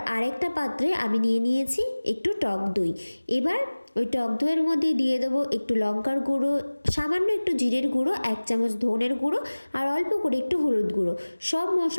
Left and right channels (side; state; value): both; inverted; correlation -1.00